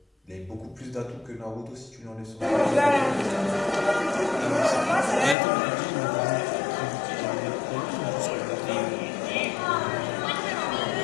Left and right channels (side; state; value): right; drops out; at 5.4 s